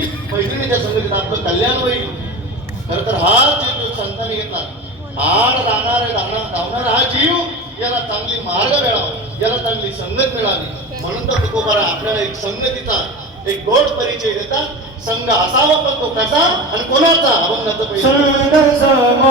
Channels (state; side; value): normal; both; correlation 0.29